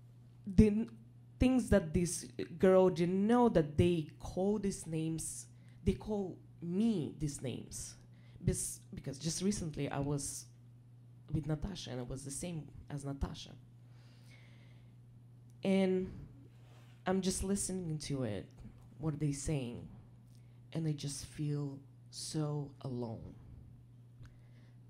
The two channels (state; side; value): identical; both; correlation 1.00